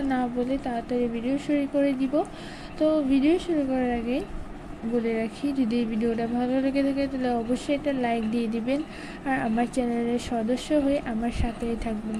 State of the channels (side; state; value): both; identical; correlation 1.00